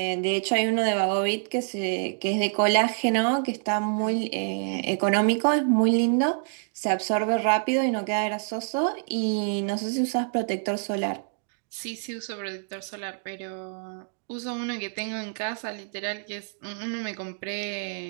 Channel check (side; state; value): left; silent; digital silence